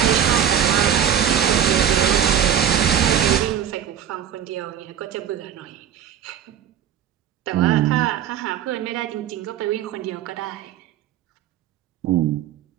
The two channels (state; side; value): quieter; left; 9.3 dB